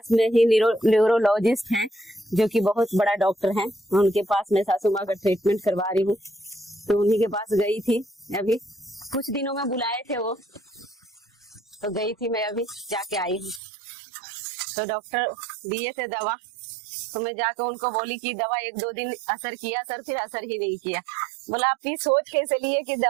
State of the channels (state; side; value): drops out; left; at 13.6 s